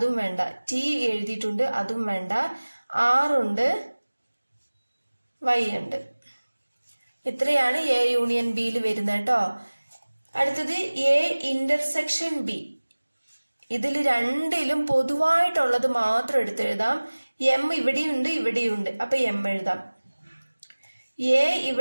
വേണ്ട. ടി എഴുതിയിട്ടുണ്ട്, അതും വേണ്ട. R ഉണ്ട്, Y ഉണ്ട്. ഇത്രയാണ് എ യൂണിയൻ ബിയിൽ വരുന്നത് കേട്ടോ. അടുത്തത് എ ഇന്റർസെക്ഷൻ ബി. ഇതിൽ രണ്ടിലും പൊതുവായിട്ടുള്ളത് മാത്രം എടുത്തെഴുതാം. എം ഇവിടെയുണ്ട്, ഇവിടെയുണ്ട്, അപ്പൊ എം എഴുതാം. എ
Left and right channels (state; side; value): inverted; both; correlation -1.00